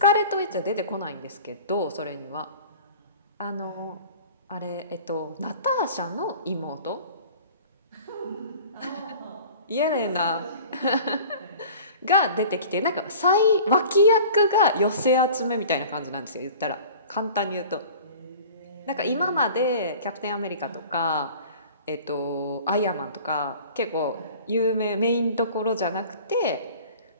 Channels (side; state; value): both; inverted; correlation -0.43